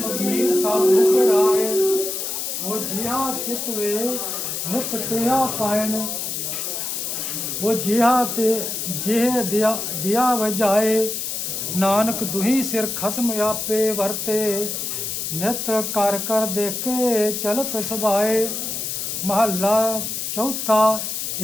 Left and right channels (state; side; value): noise; left; hiss, 3 dB below the sound